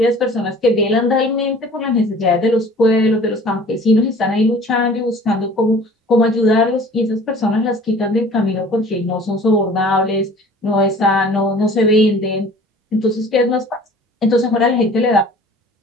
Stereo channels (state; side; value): normal; both; correlation 0.48